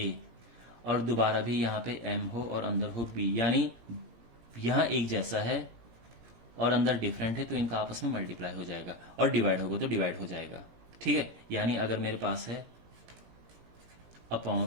और दोबारा भी यहां पे m हो और अंदर हो b, यानी यहां एक जैसा है और अंदर डिफरेंट है, तो इनका आपस में मल्टीप्लाई हो जाएगा, और डिवाइड होगा तो डिवाइड हो जाएगा। ठीक है, यानी अगर मेरे पास है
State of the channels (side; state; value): left; late; 17 ms